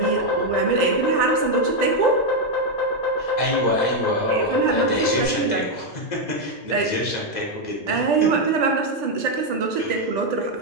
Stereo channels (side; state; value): right; late; 2.0 ms